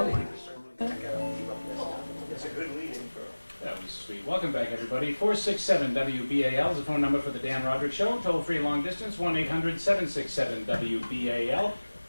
It's a good lead-in for... That was sweet. Welcome back, everybody. 467-WBAL is the phone number for the Dan Rodricks Show. Toll-free long distance, 1-800-767-WBAL.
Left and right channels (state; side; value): inverted; both; correlation -1.00